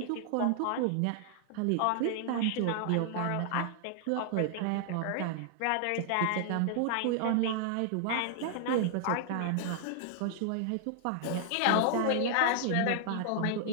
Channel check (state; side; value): different; both; correlation 0.00